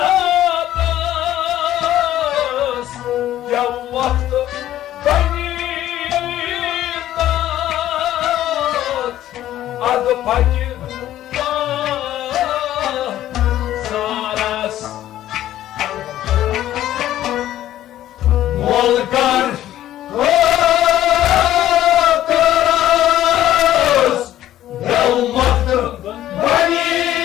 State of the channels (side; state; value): right; quieter; 13.0 dB